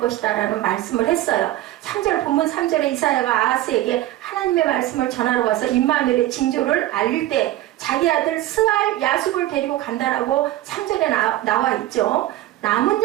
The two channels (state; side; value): quieter; left; 14.9 dB